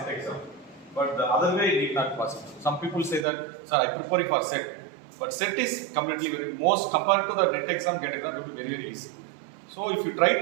exam. But the other way it is not possible. Some people say that, sir, I prepare for SET. But SET is completely most compared to the NET exam, GATE exam, it will be very, very easy. So if you try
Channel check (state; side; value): drops out; left; at 3.2 s